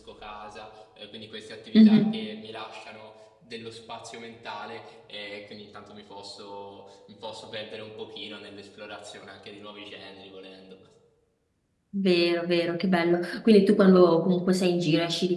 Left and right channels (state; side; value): identical; both; correlation 1.00